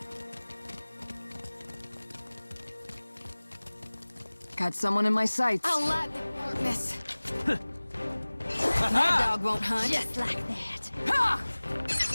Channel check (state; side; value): inverted; both; correlation -1.00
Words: Got someone in my sights. I'll let the darkness. That dog won't hunt. Just like that. Ha!